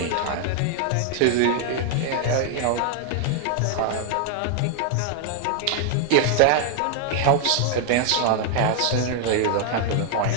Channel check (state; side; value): different; both; correlation 0.00